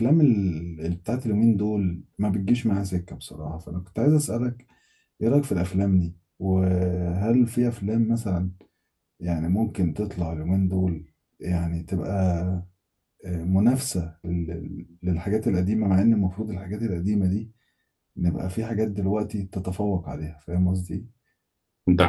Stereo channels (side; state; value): both; identical; correlation 1.00